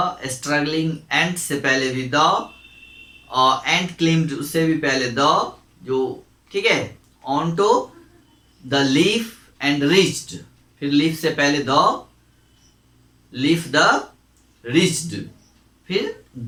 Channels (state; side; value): identical; both; correlation 1.00